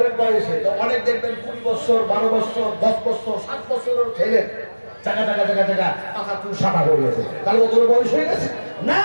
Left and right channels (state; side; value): inverted; both; correlation -1.00